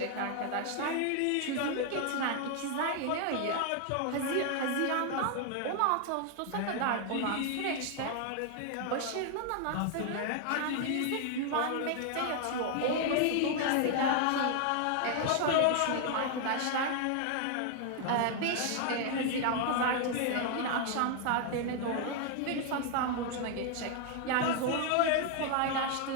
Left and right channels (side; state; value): both; different; correlation 0.00